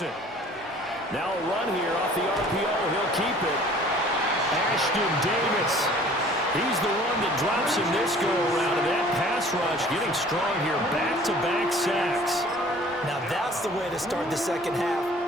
Now a run here off the RPO. He'll keep it. Ashton Davis. He's the one that drops him this go-around. And that pass rush getting strong here. Back-to-back sacks. Now that's the way to start the second half.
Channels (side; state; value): both; normal; correlation 0.51